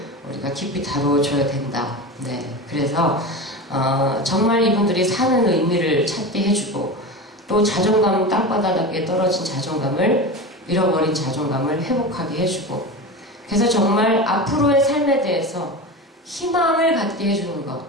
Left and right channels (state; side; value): normal; both; correlation 0.26